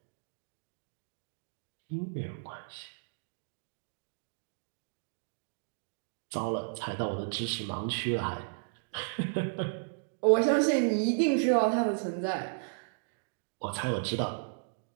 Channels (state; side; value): silent; left; digital silence